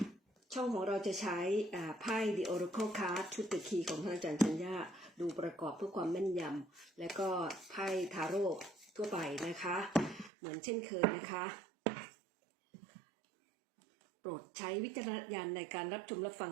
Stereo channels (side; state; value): left; drops out; at 10.3 s